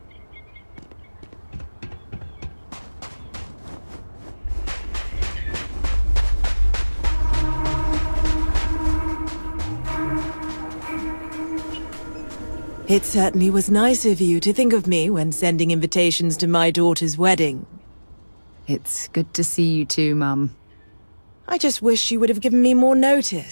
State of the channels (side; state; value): both; inverted; correlation -1.00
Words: It certainly was nice of you to think of me when sending invitations to my daughter's wedding. It's good to see you too, Mum. I just wish you would have given me more